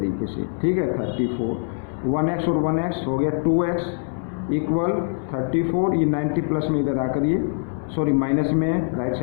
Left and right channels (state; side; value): silent; right; 63 dB below the other